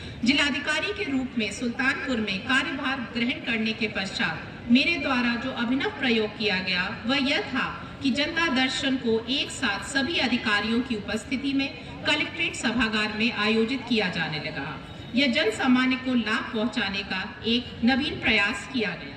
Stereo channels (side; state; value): both; identical; correlation 1.00